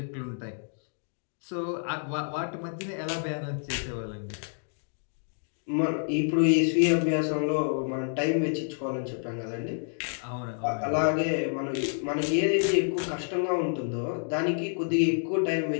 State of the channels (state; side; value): silent; right; digital silence